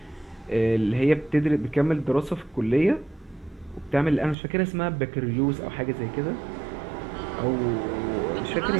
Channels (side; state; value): left; drops out; at 4.4 s